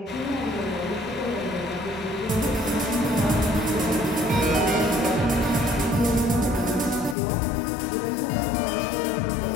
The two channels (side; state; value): right; drops out; at 7.2 s